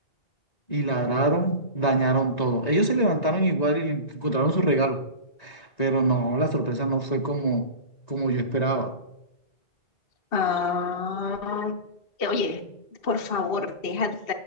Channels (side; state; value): right; late; 1.9 ms